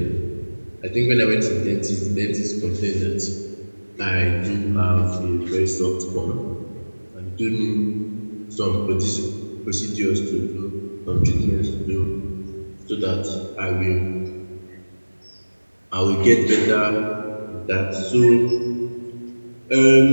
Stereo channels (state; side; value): inverted; both; correlation -1.00